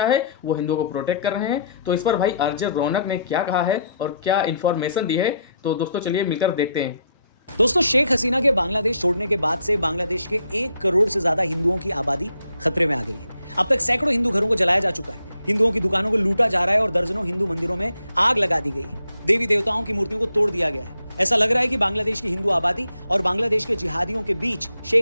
है, वो हिंदुओं को प्रोटेक्ट कर रहे हैं। तो इस पर भाई आरजे रौनक ने क्या कहा है और क्या इन्फॉर्मेशन दी है, तो दोस्तों चलिए मिलकर देखते हैं। दोस्तों, शेख हसीना के बांग्लादेश छोड़ने के बाद से बांग्लादेश के 1 करोड़ से ज्यादा हिंदुओं की आबादी खतरे में आ गई है। अब तक सैकड़ों हिंदू घरों को जलाया जा चुका है, हिंदुओं की दुकानों को लूटा जा रहा है और दर्जनों हिंदू मंदिरों में आग लगा दी गई है। देवी देवताओं की मूर्तियों को तोड़ दिया गया है। ऐसा लग रहा है कि बांग्लादेश की हिंदू आबादी और बांग्लादेश के जिहादियों के बीच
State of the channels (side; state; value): both; inverted; correlation -0.73